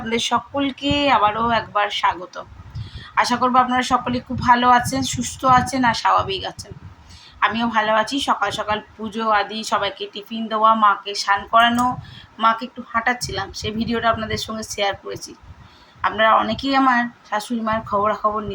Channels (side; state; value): both; identical; correlation 1.00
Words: সকলকে আবারও একবার স্বাগত। আশা করবো আপনারা সকলে খুব ভালো আছেন, সুস্থ আছেন আর স্বাভাবিক আছেন। আমিও ভালো আছি। সকাল সকাল পুজো আদি সবাইকে টিফিন দেওয়া, মাকে স্নান করানো, মাকে একটু হাঁটাচ্ছিলাম, সেই ভিডিওটা আপনাদের সঙ্গে শেয়ার করেছি। আপনারা অনেকেই আমার শাশুড়ি মায়ের খবরাখবর